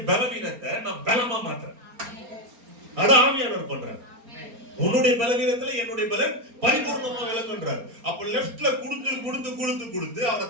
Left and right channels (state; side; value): late; left; 4.3 ms